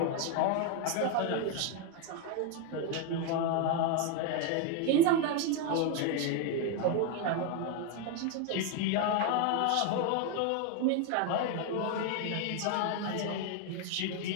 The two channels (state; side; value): different; both; correlation 0.01